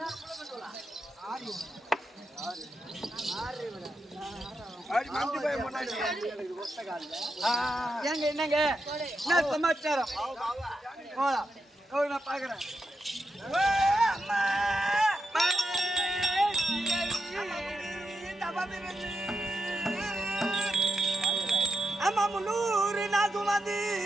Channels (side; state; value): both; normal; correlation 0.86